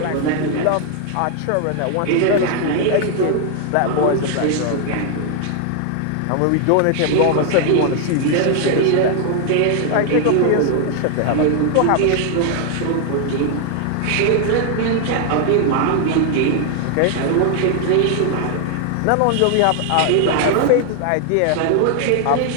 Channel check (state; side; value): different; both; correlation 0.00